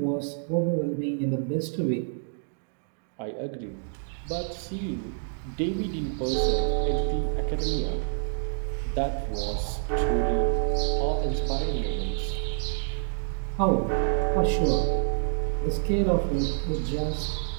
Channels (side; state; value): left; silent; digital silence